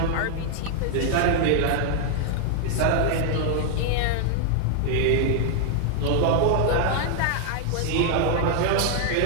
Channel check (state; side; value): different; both; correlation 0.00